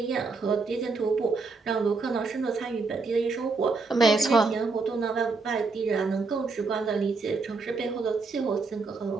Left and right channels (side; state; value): left; quieter; 4.1 dB